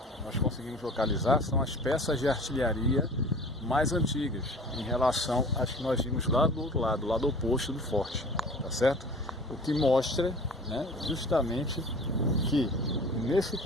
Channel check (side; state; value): both; normal; correlation 0.43